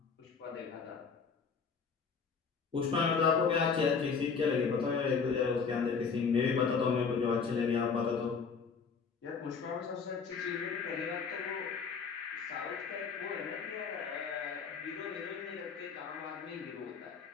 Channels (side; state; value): right; quieter; 5.6 dB